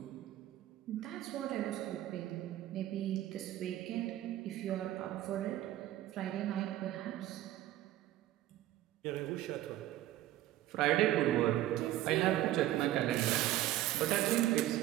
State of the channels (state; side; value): quieter; left; 14.3 dB